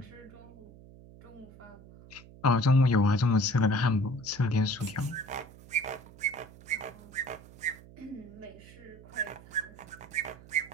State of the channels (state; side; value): noise; right; hum, 20 dB below the sound